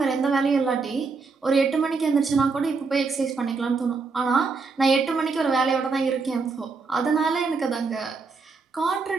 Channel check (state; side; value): quieter; left; 4.5 dB